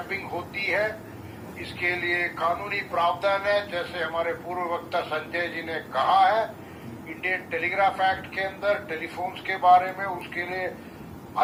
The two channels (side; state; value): both; identical; correlation 1.00